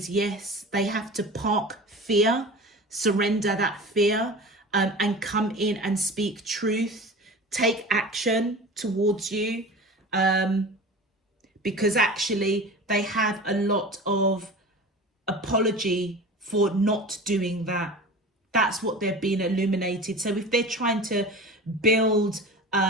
yes. They have to park fear, surrender that fear, and come in and speak truth. Take action towards you, because actually they have a lot of apology for not doing that. That's what they're being illuminated. So if they're trying to build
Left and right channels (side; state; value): both; normal; correlation 0.35